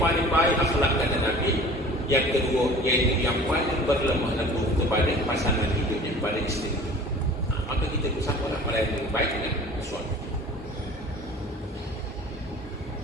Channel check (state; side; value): normal; both; correlation 0.44